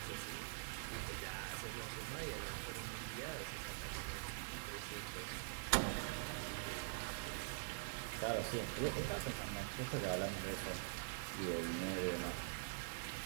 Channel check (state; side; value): silent; left; digital silence